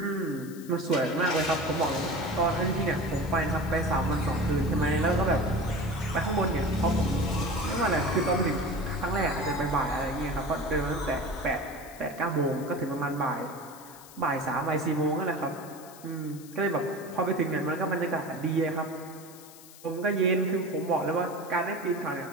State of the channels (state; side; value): noise; left; hiss, 19 dB below the sound